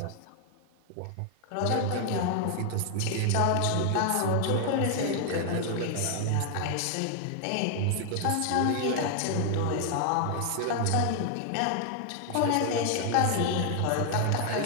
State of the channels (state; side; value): different; both; correlation 0.00